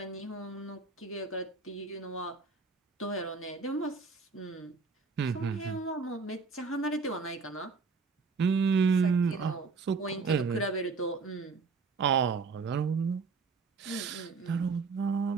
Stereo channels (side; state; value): left; quieter; 4.6 dB